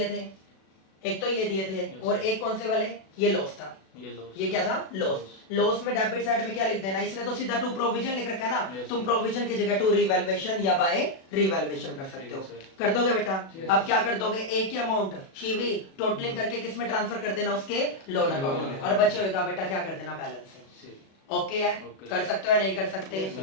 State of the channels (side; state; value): right; late; 37 ms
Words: थे, एक तो ये दिए थे, Yes. और एक कौन से वाले? ये लॉस था। ये लॉस। ये क्या था? लॉस। लॉस में डेबिट साइड में क्या लिख देना? इसने तो सीधा टू प्रोविजन लिख रखा है ना, Yes, तुम sir. प्रोविजन की जगह टू रिवैल्यूएशन या बाय रिवैल्यूएशन कर सकते हो। ठीक है, sir. कर दोगे बेटा? अब क्या कर दोगे? एक ही अमाउंट शिवी टोटलिंग करके किस में ट्रांसफर कर देना? उसके लोन अकाउंट में, और बचे होगा बेटा क्या कर देना? बैलेंस से। ओके है? Okay. कर सकते हो या नहीं कर सकते? Yes,